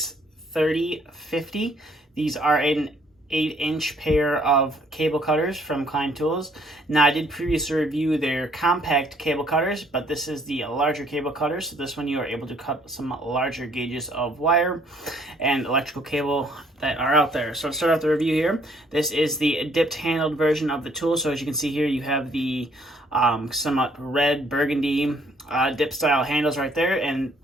These are an 8-inch pair of cable cutters from Klein Tools. Now I did previously review their compact cable cutters, but this is the larger cable cutter. So this one you are able to cut some larger gauges of wire and electrical cable that are out there. So to start off the review here, this is the dipped handled version of the tool. So as you can see here, you have the somewhat red burgundy dip style handles right there, and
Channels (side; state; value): both; normal; correlation 0.64